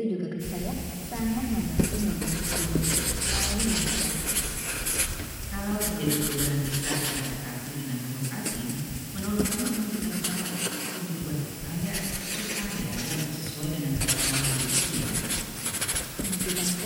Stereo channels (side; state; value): both; identical; correlation 1.00